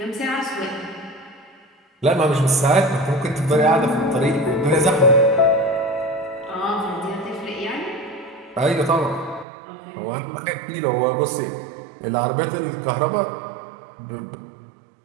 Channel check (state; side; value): drops out; left; at 9.5 s